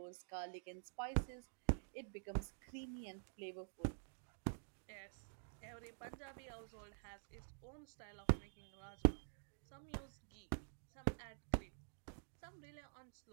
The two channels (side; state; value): left; silent; digital silence